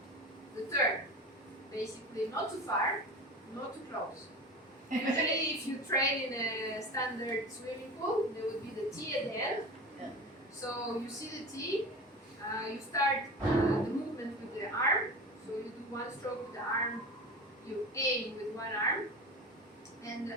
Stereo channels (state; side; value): normal; both; correlation 0.31